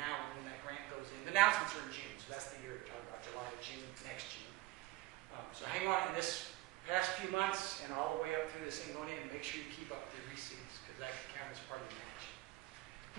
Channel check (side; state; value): left; quieter; 19.1 dB